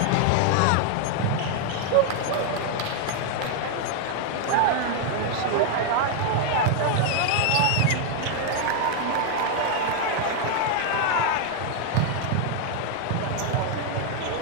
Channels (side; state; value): both; different; correlation 0.00